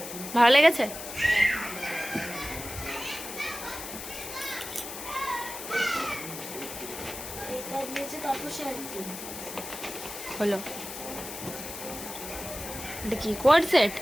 ভালো লেগেছে? এটা দিয়েছে, তারপর শাড়ি। হলো এটা কি coord set?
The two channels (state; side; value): noise; left; hiss, 9 dB below the sound